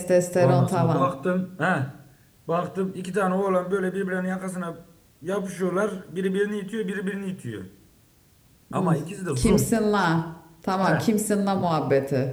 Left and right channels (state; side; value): identical; both; correlation 1.00